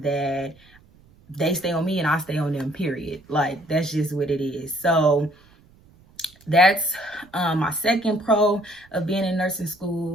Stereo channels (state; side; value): noise; right; rumble, 28 dB below the sound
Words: that they stay on me and I stay on them, period. Like that's just what it is. So that's my second pro of being in nursing